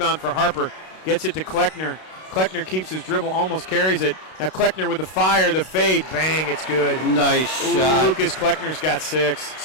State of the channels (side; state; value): right; late; 32 ms